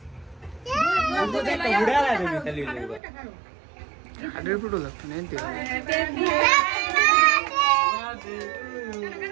বুড়া লাগে খালি হাড়ের ফুটো লাগতো না এনতে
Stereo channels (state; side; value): drops out; left; at 3.0 s